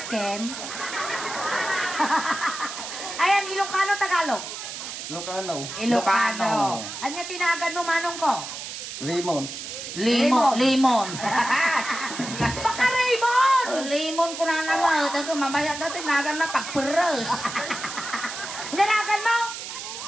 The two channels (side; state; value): right; noise; hiss, 8 dB below the sound